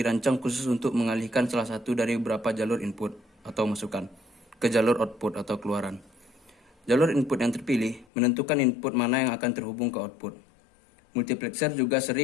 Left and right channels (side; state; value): right; drops out; at 8.1 s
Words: khusus untuk mengalihkan salah satu dari beberapa jalur input atau masukan ke jalur output atau keluaran. Jalur input yang terpilih menentukan input mana yang akan terhubung ke output. Multiplexer juga